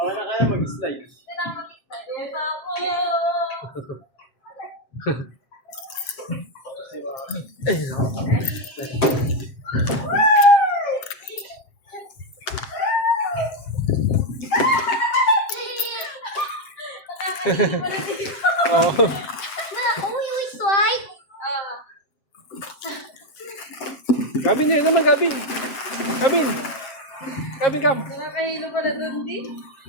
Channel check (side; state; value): right; late; 7.6 ms